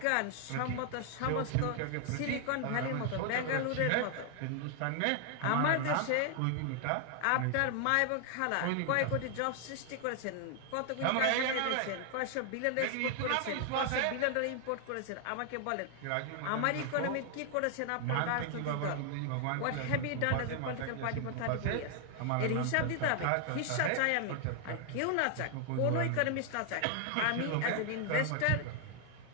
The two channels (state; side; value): different; both; correlation 0.00